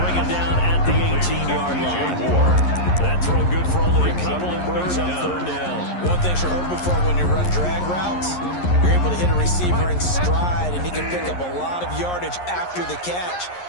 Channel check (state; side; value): late; right; 11 ms